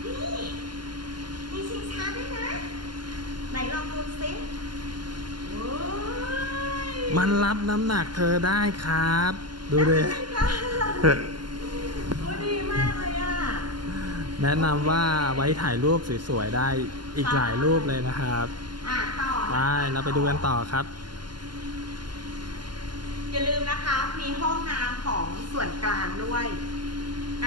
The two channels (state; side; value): late; left; 0.71 ms